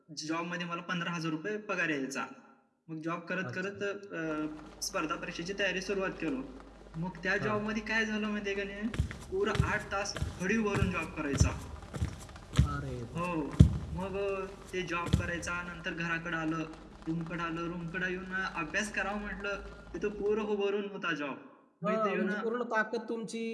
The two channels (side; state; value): both; identical; correlation 1.00